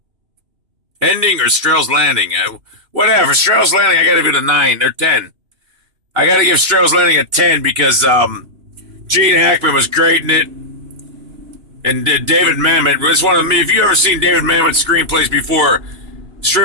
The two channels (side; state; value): left; late; 2.9 ms